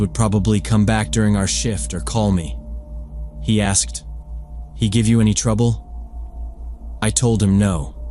probably come back during our shift or call me. He asked, "He give you any trouble?" I told him no.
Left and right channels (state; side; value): identical; both; correlation 1.00